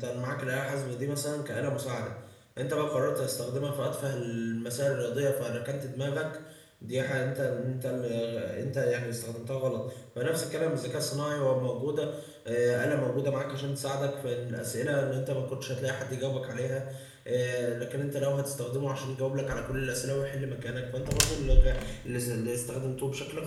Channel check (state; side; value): identical; both; correlation 1.00